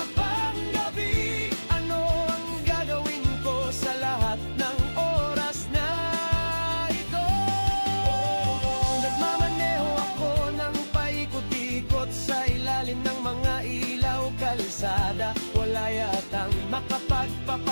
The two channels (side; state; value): both; inverted; correlation -1.00